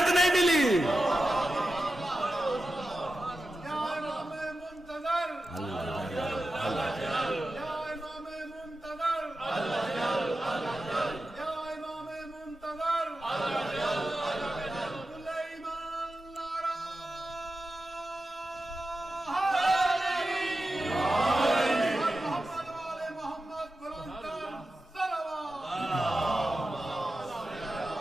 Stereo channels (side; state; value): both; normal; correlation 0.92